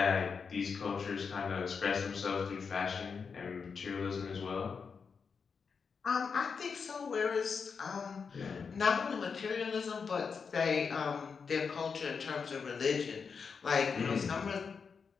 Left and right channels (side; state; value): right; quieter; 5.7 dB